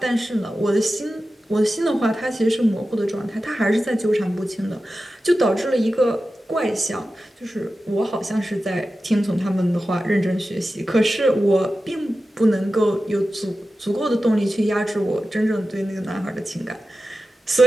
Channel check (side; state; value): both; normal; correlation 0.93